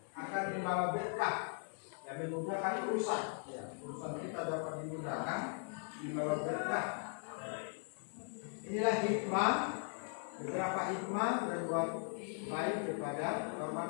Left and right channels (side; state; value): right; silent; 52 dB below the other